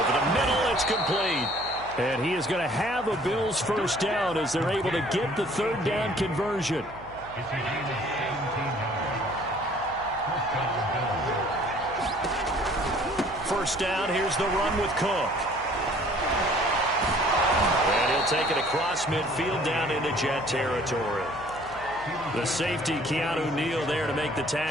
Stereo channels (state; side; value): noise; left; hum, 19 dB below the sound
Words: the middle, it's complete. And he is going to have a Bills first down as they're able to get the third down conversion. First down, here's the run with Cook. And he'll take it across midfield down into Jet territory. The safety, Keanu Neal, there to make the